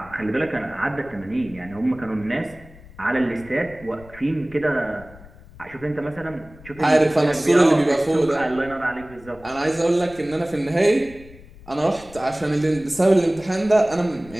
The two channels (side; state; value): left; noise; rumble, 21 dB below the sound